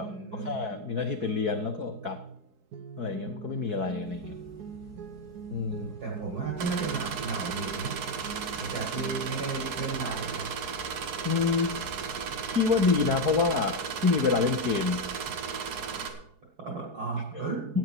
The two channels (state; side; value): late; left; 4.7 ms